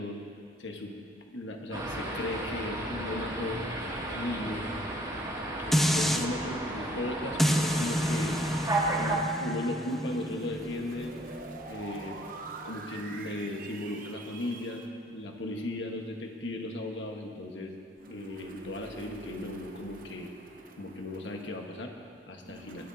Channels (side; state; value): both; normal; correlation 0.60